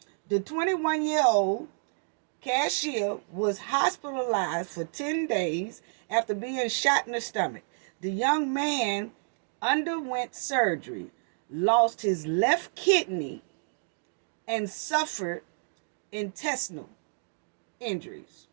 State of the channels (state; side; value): silent; left; digital silence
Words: the 21-year-old cashier was hospitalized for 10 days after being shot in the stomach. The young man underwent surgery, lost his left kidney, and suffered intestinal injuries.